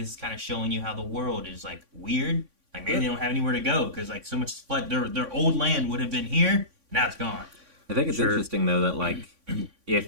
is kind of showing you how the world is like weird. Like maybe they don't have anywhere to go because like so much flood. Their old land would have been here, now it's gone. I think it's Sure. interesting though that like if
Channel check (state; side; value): late; left; 3.5 ms